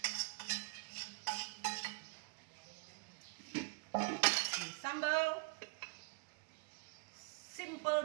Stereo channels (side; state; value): left; quieter; 33.9 dB